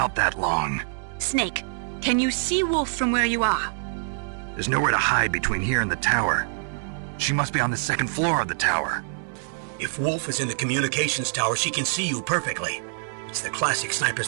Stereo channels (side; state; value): left; silent; digital silence